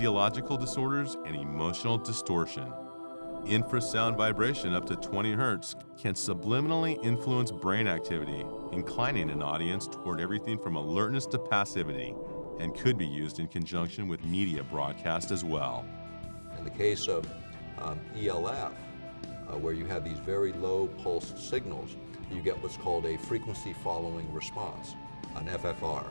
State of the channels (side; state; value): both; inverted; correlation -1.00